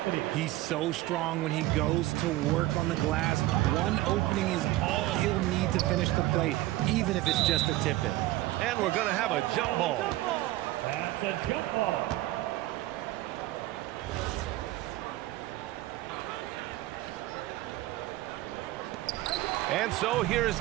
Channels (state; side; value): quieter; left; 16.8 dB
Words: He's so strong when he goes to work on the glass. One opening is all he'll need to finish the play, even if it's just a tip in. And we're going to have a jump ball. That's a jump ball. And so here's